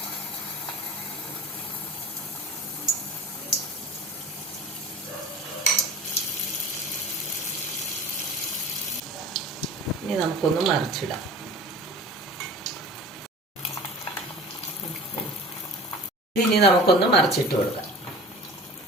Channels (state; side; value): normal; both; correlation 0.40